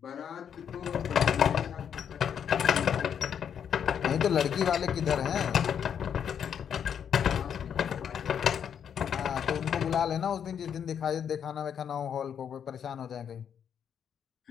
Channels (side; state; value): right; quieter; 8.2 dB